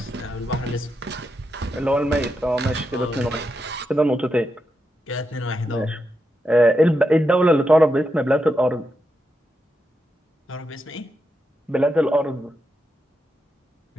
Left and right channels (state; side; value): normal; both; correlation 0.85